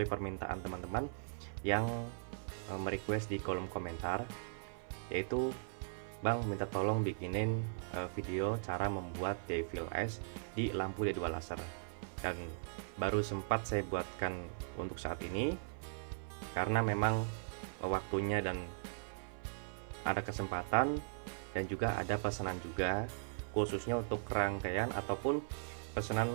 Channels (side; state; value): left; silent; 52 dB below the other